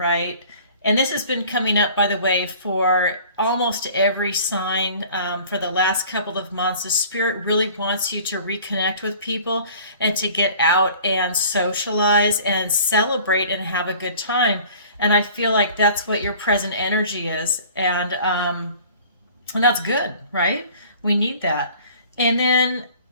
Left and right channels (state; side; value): inverted; both; correlation -0.49